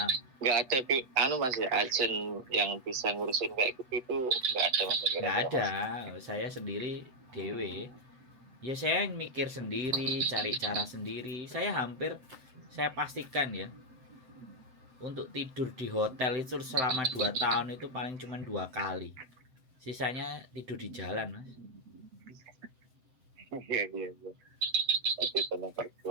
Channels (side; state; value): left; late; 7.8 ms